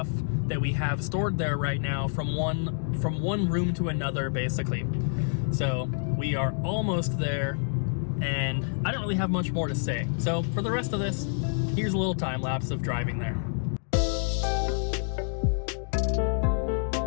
that we have stored there right now from one room to another, basically. So we are almost there, and I don't really have much more to say. So for the rest of this, here's a little time lapse of driving there.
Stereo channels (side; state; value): right; silent; digital silence